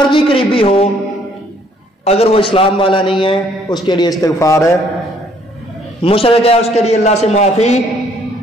قریبی ہو اگر وہ اسلام والا نہیں ہے اس کے لیے استغفار ہے، مشرک ہے اس کے لیے اللہ سے معافی۔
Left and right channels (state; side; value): normal; both; correlation 0.63